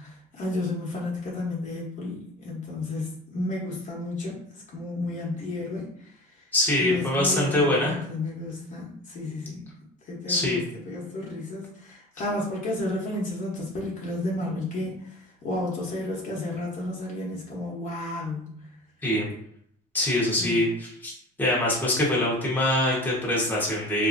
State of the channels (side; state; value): both; normal; correlation 0.38